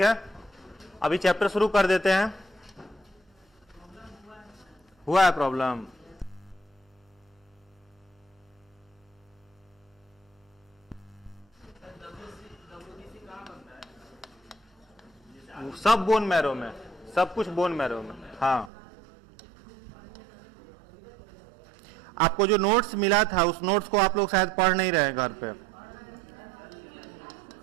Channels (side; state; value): left; drops out; at 18.7 s